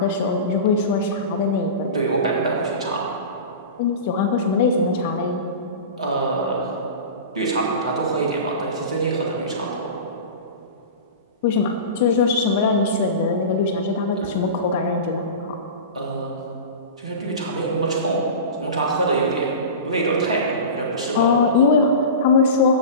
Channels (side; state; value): both; inverted; correlation -0.30